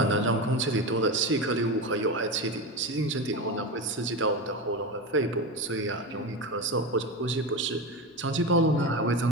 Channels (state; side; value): normal; both; correlation 0.20